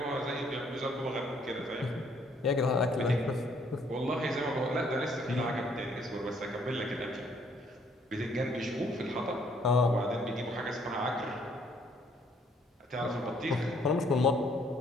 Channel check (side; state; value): both; normal; correlation 0.65